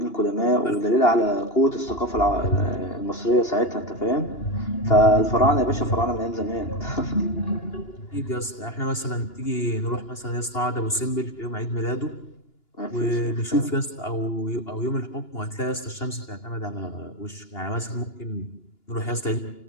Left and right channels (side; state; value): right; late; 2.9 ms